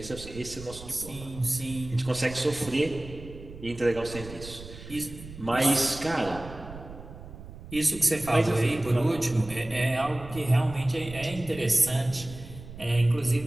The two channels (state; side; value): noise; right; rumble, 14 dB below the sound